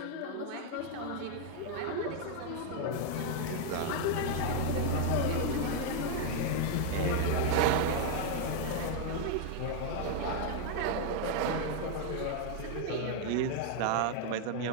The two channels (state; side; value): different; both; correlation 0.00